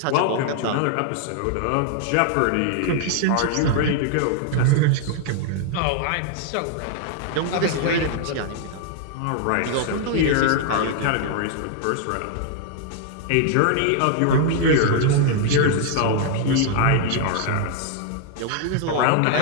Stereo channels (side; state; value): both; different; correlation 0.00